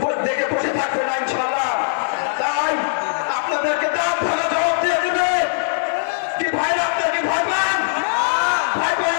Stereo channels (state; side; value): silent; right; 56 dB below the other